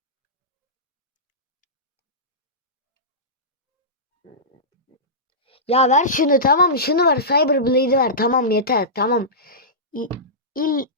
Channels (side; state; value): both; normal; correlation -0.17